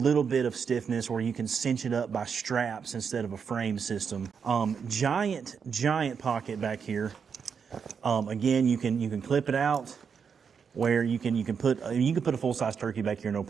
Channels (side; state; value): left; quieter; 6.5 dB